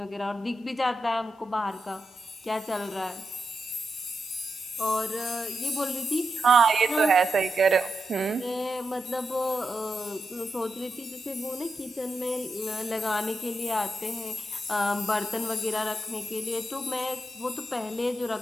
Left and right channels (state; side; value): normal; both; correlation 0.86